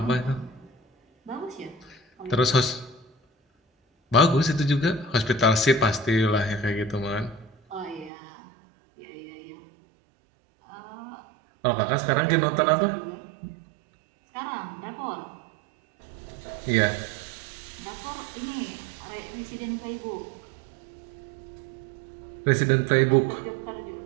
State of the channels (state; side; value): drops out; left; at 8.1 s